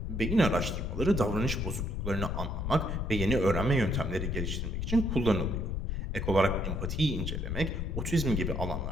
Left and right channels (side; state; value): left; noise; rumble, 2 dB below the sound